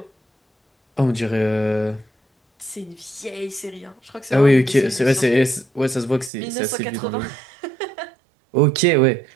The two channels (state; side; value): drops out; left; at 6.3 s